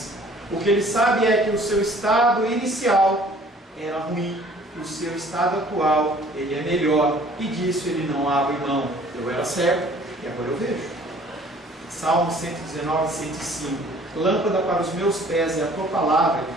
O que ele sabe é que o seu estado inicial era ruim, o seu estado atual ele é melhor, e disso ele não abre mão. Eu era cego e agora eu vejo. Salmo 119, 105. Lâmpada para os meus pés é a tua palavra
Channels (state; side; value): normal; both; correlation 0.54